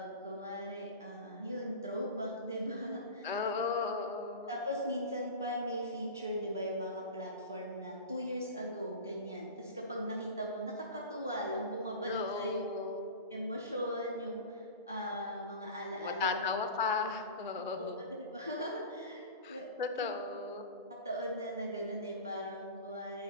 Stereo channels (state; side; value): inverted; both; correlation -0.32